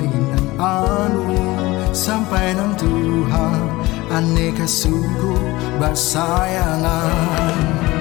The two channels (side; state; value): right; quieter; 20.0 dB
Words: nan anu sampai nan Tuhan, aneka suku bersayangan.